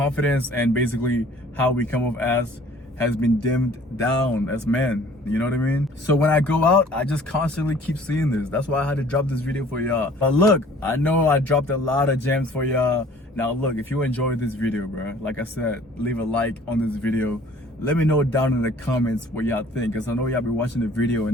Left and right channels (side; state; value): both; normal; correlation 0.52